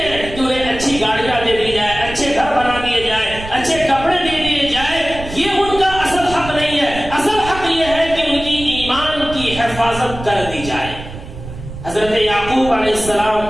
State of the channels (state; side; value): noise; right; rumble, 12 dB below the sound